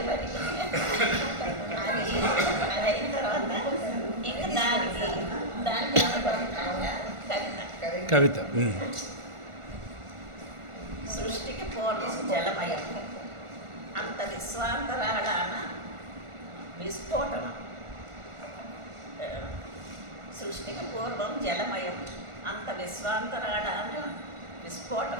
మరి అది అయిన తర్వాత ఇంకా దానికి కవిత సృష్టికి పూర్వం జలమయం, అంత విశ్వాంతరాళాన విస్ఫోటనం. సృష్టికి పూర్వం జలమయం, అంత విశ్వాంతరాళాన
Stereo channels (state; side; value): late; left; 1.4 ms